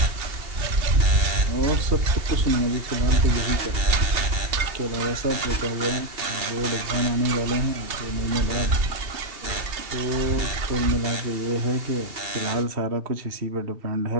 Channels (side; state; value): left; late; 2.7 ms